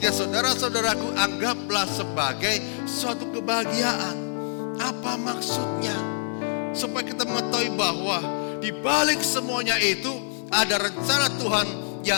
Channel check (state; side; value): silent; right; digital silence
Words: saudara-saudaraku, anggaplah sebagai suatu kebahagiaan. Apa Apa maksudnya? Supaya kita mengetahui bahwa di balik semuanya itu ada rencana Tuhan